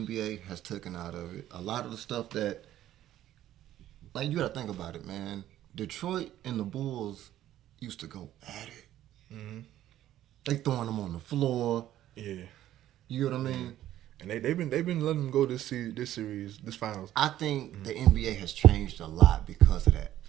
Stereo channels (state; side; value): quieter; left; 12.8 dB